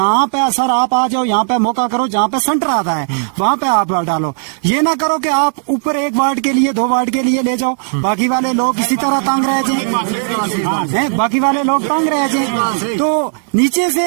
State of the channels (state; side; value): silent; left; digital silence